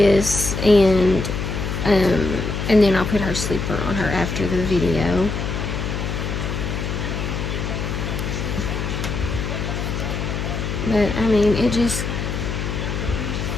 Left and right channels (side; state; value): left; noise; hum, 3 dB below the sound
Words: and then I'll put her sleeper on her after the video. But I mean,